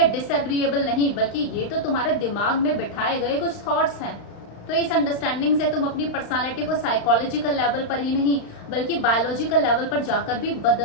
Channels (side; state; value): right; late; 35 ms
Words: डिसएग्रीएबल नहीं, बल्कि ये तो तुम्हारे दिमाग में बिठाए गए कुछ थॉट्स हैं, तो इस अंडरस्टैंडिंग से तुम अपनी पर्सनालिटी को साइकोलॉजिकल लेवल पर ही नहीं बल्कि बायोलॉजिकल लेवल पर जाकर भी